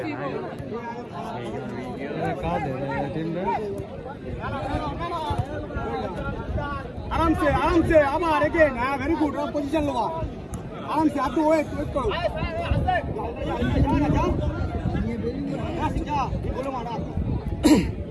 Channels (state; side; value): identical; both; correlation 1.00